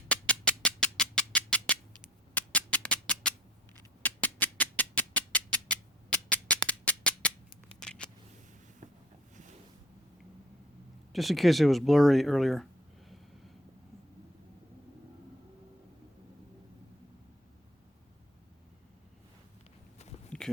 just in case it was blurry earlier.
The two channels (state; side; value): normal; both; correlation 0.46